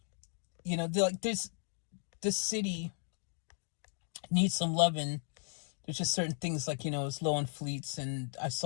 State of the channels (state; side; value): silent; right; digital silence